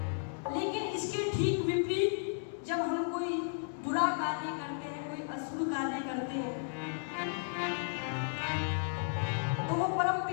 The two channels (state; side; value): silent; right; digital silence